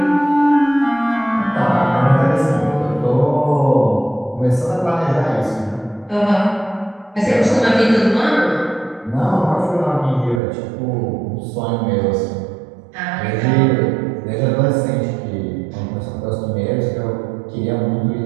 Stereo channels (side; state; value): left; drops out; at 10.4 s